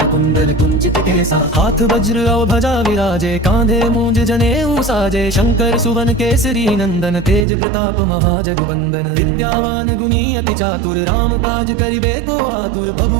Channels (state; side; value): drops out; left; at 7.5 s